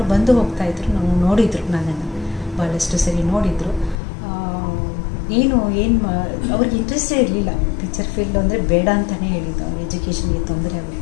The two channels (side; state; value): right; drops out; at 4.0 s